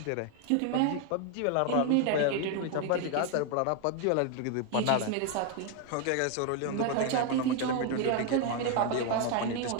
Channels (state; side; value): different; both; correlation 0.01